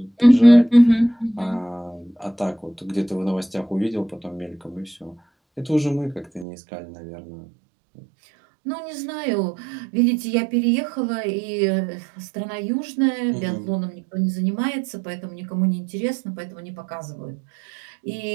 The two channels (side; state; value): left; drops out; at 6.5 s